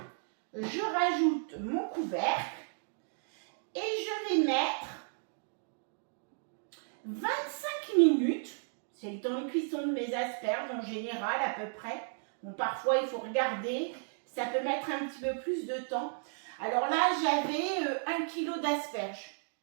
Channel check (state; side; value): silent; left; digital silence